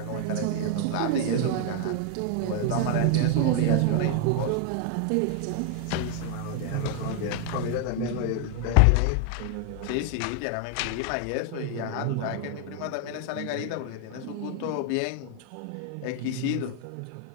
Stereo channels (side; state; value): both; different; correlation 0.00